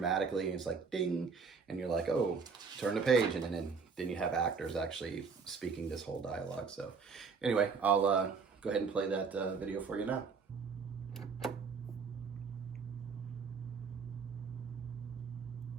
and it's like ding, and you're like, oh, turn the page, and then you have actors actually speaking this whole dialogue. So anyway, I'll go ahead and play that video for you now.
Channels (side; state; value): left; quieter; 5.2 dB